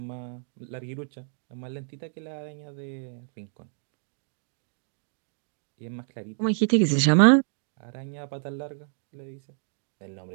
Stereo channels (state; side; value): silent; left; 59 dB below the other